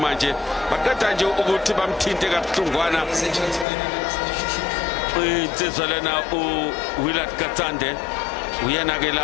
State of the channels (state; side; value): drops out; right; at 3.7 s